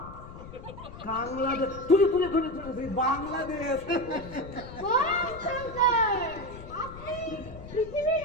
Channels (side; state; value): left; noise; rumble, 14 dB below the sound